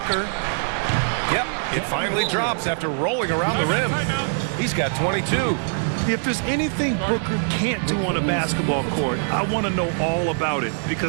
Yep, it finally drops after rolling around the rim. He's got 22. If there's anything Booker can't do on a basketball court, I want to know all about it,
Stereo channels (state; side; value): silent; left; digital silence